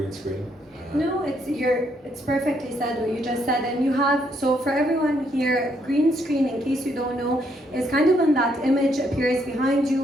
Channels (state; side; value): normal; both; correlation 0.73